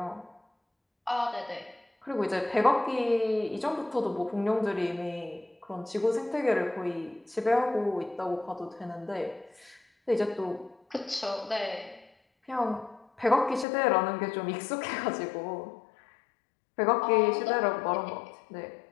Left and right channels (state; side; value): drops out; right; at 13.7 s